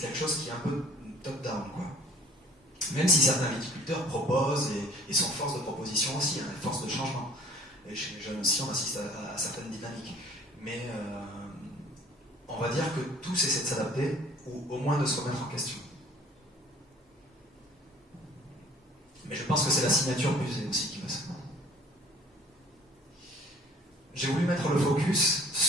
quelque chose qui est un peu top-down, quoi. Même si certains viticulteurs proposent et sont force de proposition aussi, hein, force de changement. Et chez les jeunes aussi, on assiste à certaines dynamiques. Mais on va dire que tous essaient de s'adapter, ou au moins de se remettre en question. Mais je pense que c'est la signature Buzet aussi qui va se faire. J'ai voulu mettre le focus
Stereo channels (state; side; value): normal; both; correlation 0.51